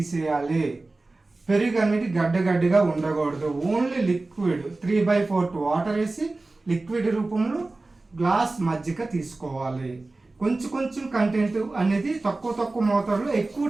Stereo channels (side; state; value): left; quieter; 3.2 dB